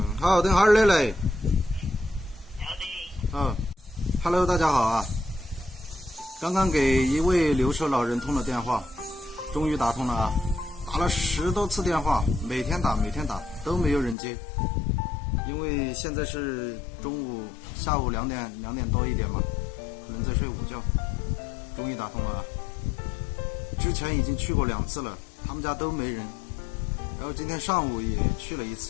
好，等哈儿的来。要得。啊 ，Hello， 大家好啊。刚刚给一位留守老人通了电话，终于打通了啊。打了10多次电话，每天打都没有人接，因为现在是下午2点多一点嘛，可能在睡午觉。终于打通了啊！之前已经去过2次了，他们家都没人。然后今天上午也去了1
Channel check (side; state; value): right; drops out; at 14.2 s